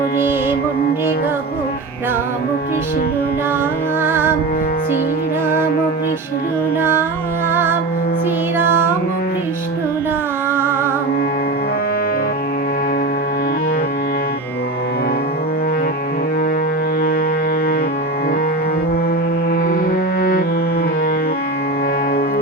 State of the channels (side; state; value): left; quieter; 3.1 dB